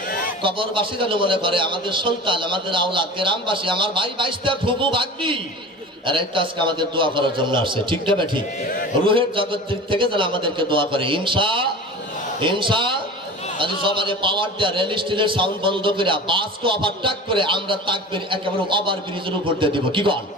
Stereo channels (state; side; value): normal; both; correlation 0.35